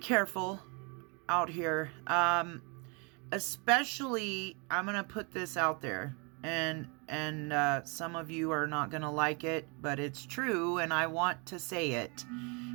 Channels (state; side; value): quieter; left; 32.9 dB